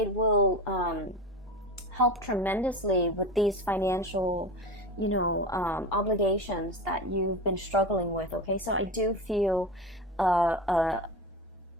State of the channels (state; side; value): normal; both; correlation 0.26